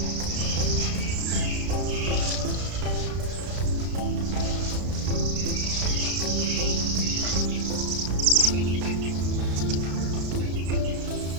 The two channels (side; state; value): left; late; 33 ms